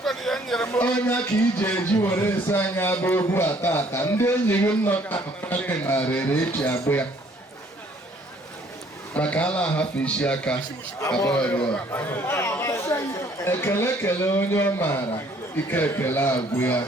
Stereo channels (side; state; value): both; normal; correlation 0.61